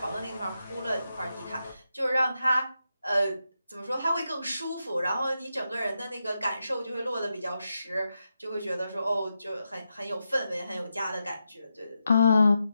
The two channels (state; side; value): inverted; both; correlation -0.87